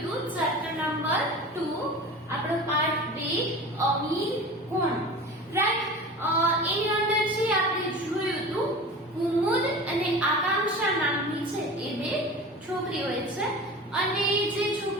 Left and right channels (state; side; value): normal; both; correlation 0.35